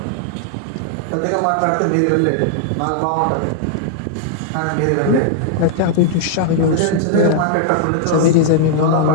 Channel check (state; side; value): different; both; correlation -0.01